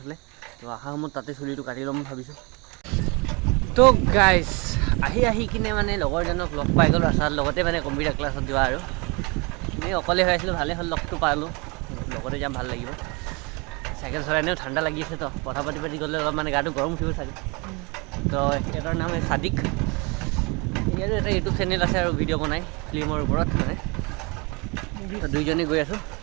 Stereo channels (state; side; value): quieter; left; 28.8 dB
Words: তো অহা সময়ত তাতে চুলিটো কাটি ল'ম ভাবিছোঁ। তো গাইজ আহি কিনে মানে লগৰজনক লগ পাই গ'লোঁ ৰাস্তাৰ লগতে মানে কম্পিউটাৰ ক্লাছত যোৱা আৰু এনেই অকলে হৈ আছিলোঁ, ভালেই হ'ল লগটো পালোঁ, লগতে যাম ভাল লাগিব। চাইকেল চলাই এনেও ঠাণ্ডা লাগি আছে তো কথা পাতি গ'লে অলপ মানে গাটো গৰম উঠিব চাগে। তো এটাৰ নাম সাদিক, ইয়াৰো এটা ইউটিউব চেনেল আছে আৰু ভিডিঅ' বনাই ফিল্মৰ ওপৰত মানে। দুইজনে গৈ আছোঁ।